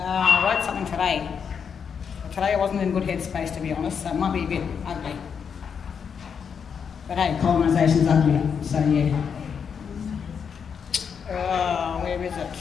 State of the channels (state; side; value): quieter; right; 6.8 dB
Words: wrote something today. Today I wasn't in good headspace, to be honest, so it might be a bit ugly. But hey, colonisation's ugly, so yeah. Where is it?